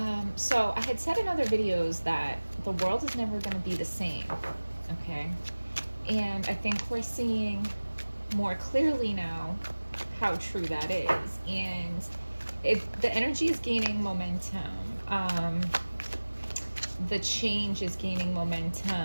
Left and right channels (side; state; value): both; inverted; correlation -1.00